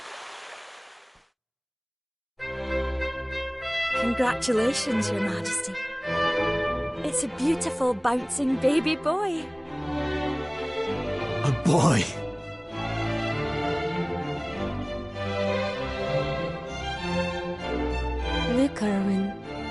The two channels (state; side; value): identical; both; correlation 1.00